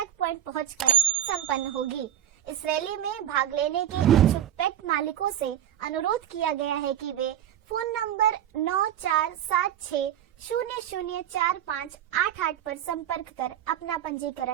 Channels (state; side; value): quieter; left; 11.2 dB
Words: पॉइंट पहुंचकर संपन्न होगी। इस रैली में भाग लेने के इच्छुक पेट मालिकों से अनुरोध किया गया है कि वे फोन नंबर 9476004588 पर संपर्क कर अपना